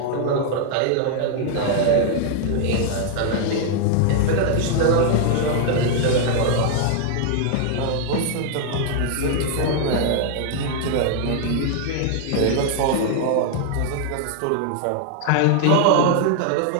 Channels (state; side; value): different; both; correlation 0.00